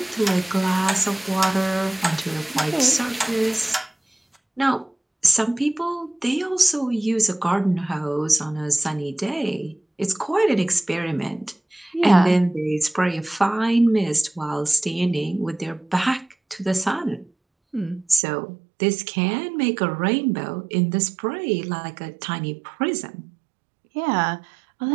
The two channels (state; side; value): drops out; left; at 18.2 s